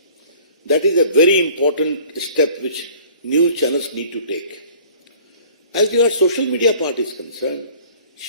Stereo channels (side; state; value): both; inverted; correlation -0.50